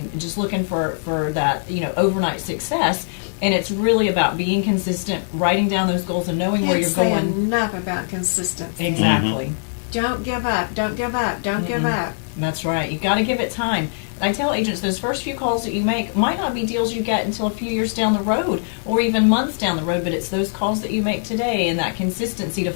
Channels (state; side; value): silent; right; digital silence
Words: and just looking for that overnight success. And it's really about being consistent, writing down those goals, and knowing where you're Can't say going. enough about consistency. Exactly. Don't give up. Don't give up. Don't give up. That's right. You've got to give it time. I tell agents those first few calls that you make might not be deals you get until a few years down the road or even months down the road, but it's those calls that you make today and that consistency to